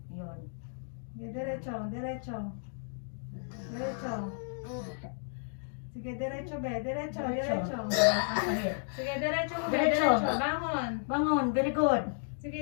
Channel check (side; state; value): right; silent; digital silence